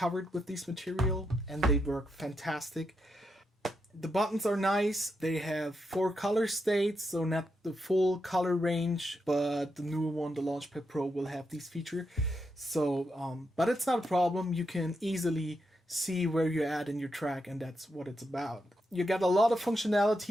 with this material, and they work fantastic. The buttons are nice. They have 4 color states, so not the full color range, but the newer one, the Launchpad Pro, will have these features. So, but it's not a problem. You can easily see where you're at in your track, and that's what it's about. You got a lot of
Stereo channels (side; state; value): both; normal; correlation 0.83